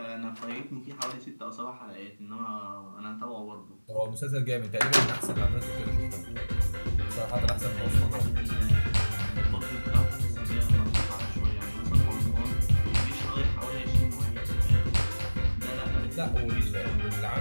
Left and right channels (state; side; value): inverted; both; correlation -1.00